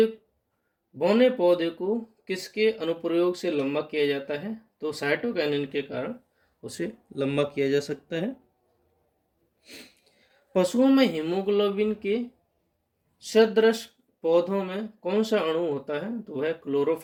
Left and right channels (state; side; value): identical; both; correlation 1.00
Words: बौने पौधे को किसके अनुप्रयोग से लंबा किया जाता है? तो साइटोकाइनिन के कारण उसे लंबा किया जा सकता है। पशुओं में हीमोग्लोबिन के सदृश पौधों में कौन सा अणु होता है? तो वह